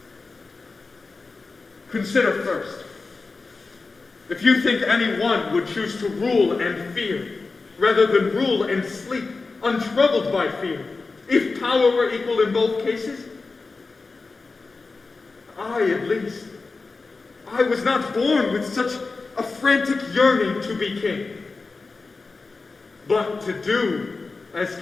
Consider first, if you think any one would choose to rule and fear, rather than rule and sleep, untroubled by fear, if power were equal in both cases, I, at least, I was not born with such a frantic yearning to be king, but to do as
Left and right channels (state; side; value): quieter; right; 4.0 dB